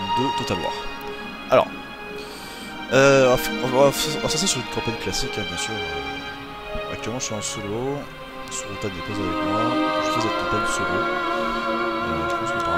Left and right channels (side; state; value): both; identical; correlation 1.00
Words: 2 Total War. Alors, on va passer sur une campagne classique, hein, bien sûr. Actuellement je suis en solo, Surutan n'est pas avec moi, je fais cette campagne solo. Je pense que par